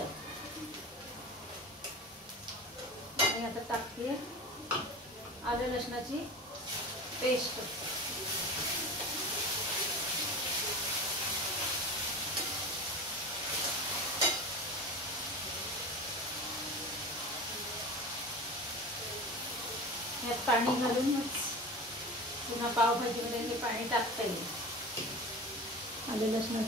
आणि आता टाकते आलं लसणाची पेस्ट. यात पाणी घालूनच पुन्हा पावभाजीमध्ये हे पाणी टाकता येईल. आलं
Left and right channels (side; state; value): both; normal; correlation 0.31